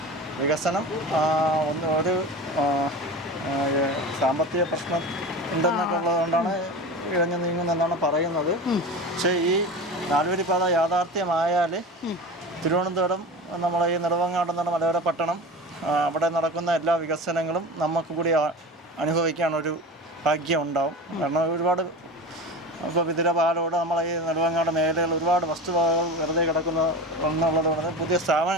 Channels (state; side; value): normal; both; correlation 0.30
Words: വികസനം ഒരു സാമ്പത്തിക പ്രശ്നം ഉണ്ടെന്നൊക്കെ ഉള്ളതുകൊണ്ടാണ് ഇഴഞ്ഞു നീങ്ങുന്നതെന്നാണ് പറയുന്നത്. പക്ഷേ ഈ 4 വരി പാത യാഥാർത്ഥ്യമായാൽ തിരുവനന്തപുരം നമ്മളെ ഈ നെടുമങ്ങാട് എന്ന മലയോര പട്ടണം അവിടെ നടക്കുന്ന എല്ലാ വികസനങ്ങളും നമുക്ക് കൂടി അനുഭവിക്കാനൊരു ഭാഗ്യം ഉണ്ടാവും. കാരണം ഒരുപാട് ഇപ്പോൾ വിതിരപാലോട് നമ്മളെ ഈ നെടുമങ്ങാട് മേഖലകൾ ഒരുപാട് വസ്തുവകകൾ വെറുതെ കിടക്കുന്ന എന്നുള്ളതുകൊണ്ട് പുതിയ